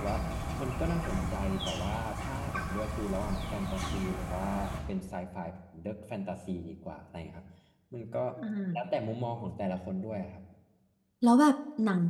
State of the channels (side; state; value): both; identical; correlation 1.00